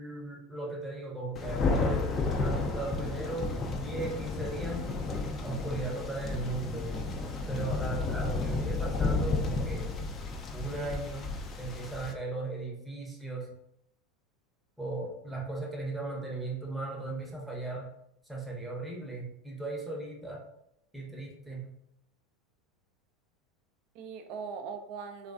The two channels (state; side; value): normal; both; correlation 0.48